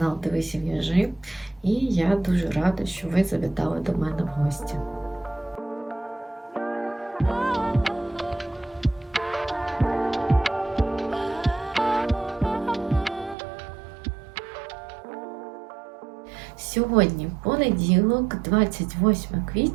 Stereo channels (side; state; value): left; drops out; at 13.4 s